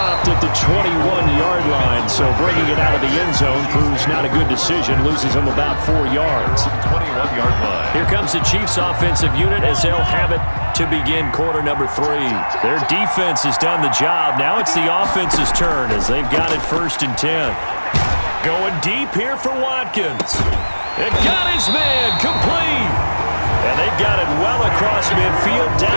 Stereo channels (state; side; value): inverted; both; correlation -1.00